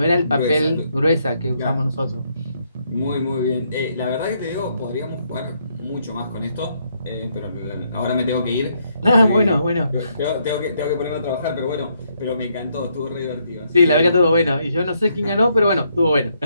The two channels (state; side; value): inverted; both; correlation -0.74